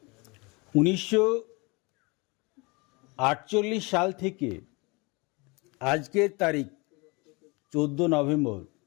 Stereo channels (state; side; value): quieter; right; 27.5 dB